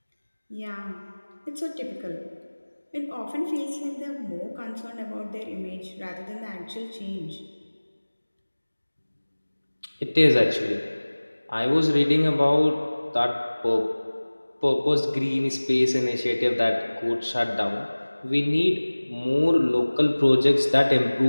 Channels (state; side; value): inverted; both; correlation -1.00